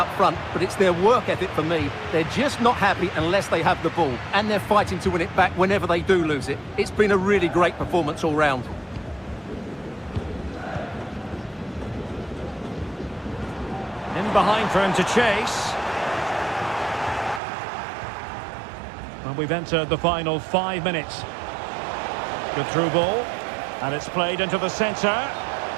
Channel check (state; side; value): drops out; left; at 17.4 s